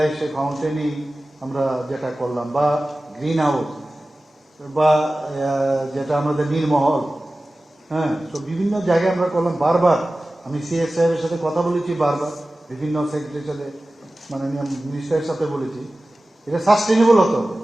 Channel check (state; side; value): normal; both; correlation 0.96